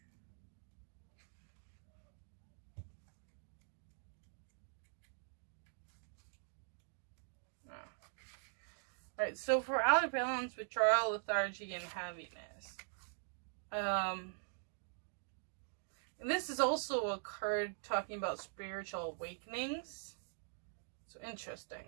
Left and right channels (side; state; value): left; silent; digital silence